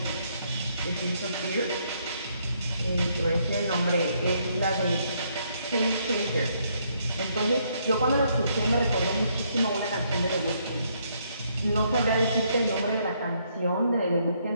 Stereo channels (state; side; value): inverted; both; correlation -0.72